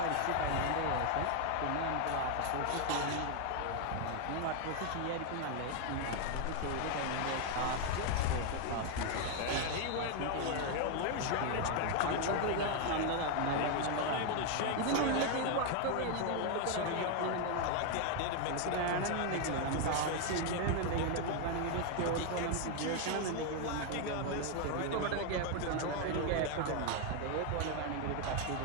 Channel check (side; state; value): both; different; correlation 0.01